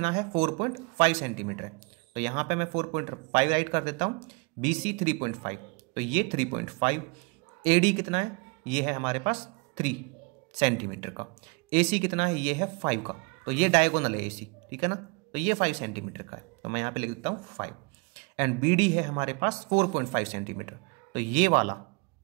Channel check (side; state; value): left; quieter; 30.6 dB